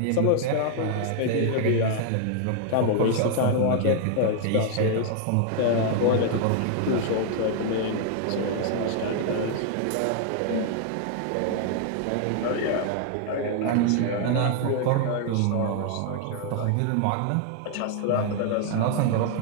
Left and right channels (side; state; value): both; different; correlation 0.00